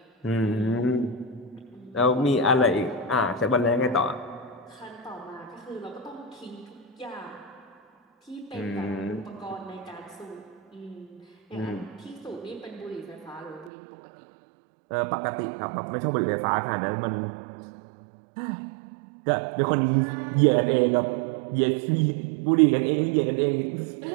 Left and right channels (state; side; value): drops out; left; at 13.7 s